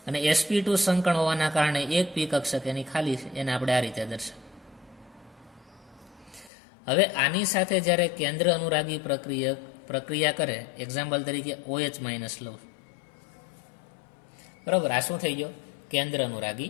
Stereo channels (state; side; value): drops out; right; at 6.5 s